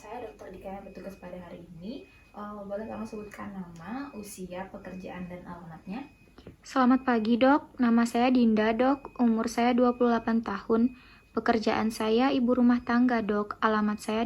Dr. Dika yang bertugas pada hari ini. Boleh tolong sebutkan nama, usia, pekerjaan, dan alamatnya? Selamat pagi dok, nama saya Dinda dok, umur saya 28 tahun, pekerjaan saya ibu rumah tangga dok, alamat saya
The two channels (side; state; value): both; identical; correlation 1.00